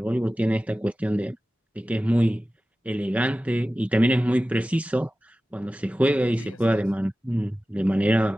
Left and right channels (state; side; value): normal; both; correlation 0.96